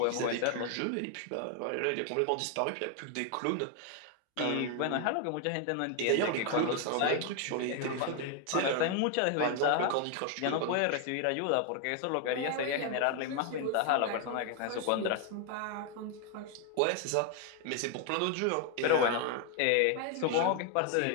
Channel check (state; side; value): different; both; correlation 0.01